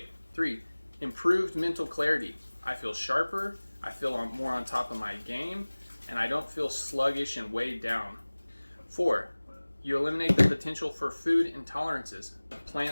3, improved mental clarity. I feel sharper, I feel more on top of my game, and I don't feel sluggish and weighed down. 4, you eliminate the potential for food intolerances.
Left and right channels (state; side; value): inverted; both; correlation -1.00